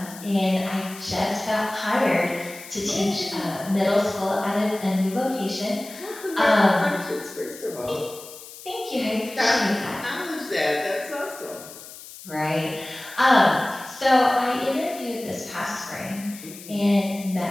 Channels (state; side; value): noise; left; hiss, 16 dB below the sound